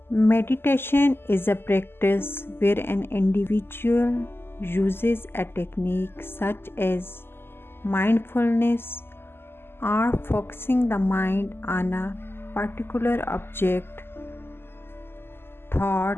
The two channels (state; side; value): late; right; 0.11 ms